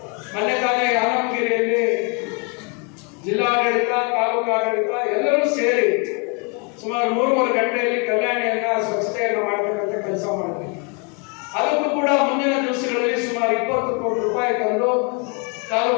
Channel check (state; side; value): quieter; right; 34.8 dB